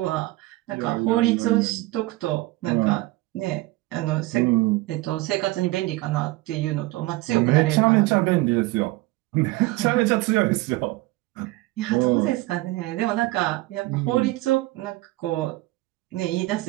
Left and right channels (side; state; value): left; quieter; 19.8 dB